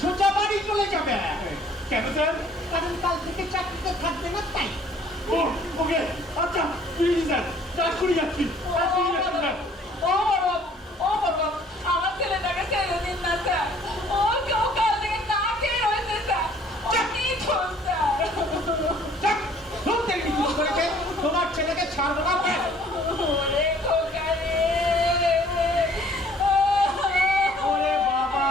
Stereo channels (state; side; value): normal; both; correlation 0.57